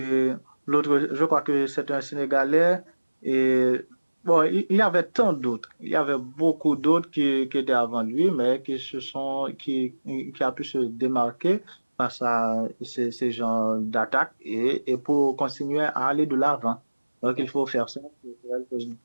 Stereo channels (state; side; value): inverted; both; correlation -1.00